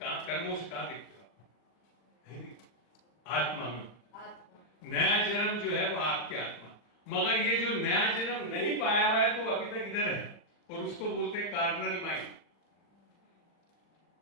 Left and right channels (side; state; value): right; late; 39 ms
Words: से कहां दिखते हो? आत्मा में। नया जन्म जो है वो आपकी आत्मा। मगर ये जो नया जन्म नहीं पाया हुआ है तो अभी तक इधर है, और उसको बोलते हैं कार्नल माइंड।